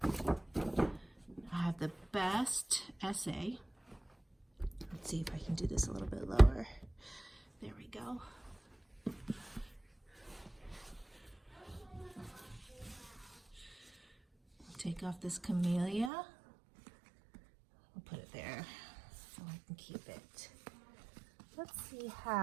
I have the best essay. Let's see if I can do this a little bit lower. There we go. Take off this camellia. I'll put it there so I can keep it. Let's see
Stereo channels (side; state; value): left; drops out; at 16.1 s